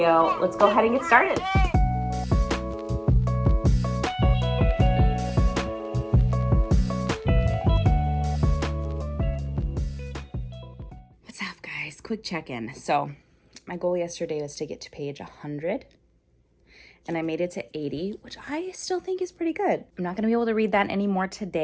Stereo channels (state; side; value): identical; both; correlation 1.00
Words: let's go ahead and get started. Quick check-in. So my goal yesterday was to get to page 100, and I made it to 80, which I still think is pretty good. I'm not going to be able to read that anymore